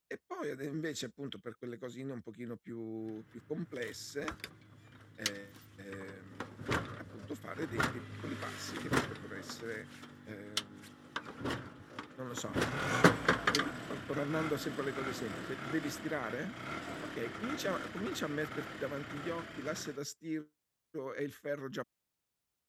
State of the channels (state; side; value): identical; both; correlation 1.00